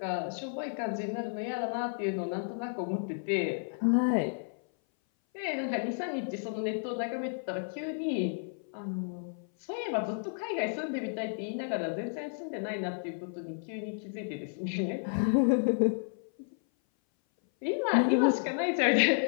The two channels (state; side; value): silent; right; 56 dB below the other